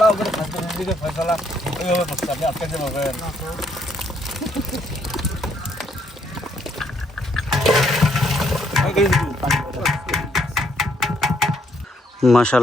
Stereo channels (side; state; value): both; normal; correlation 0.71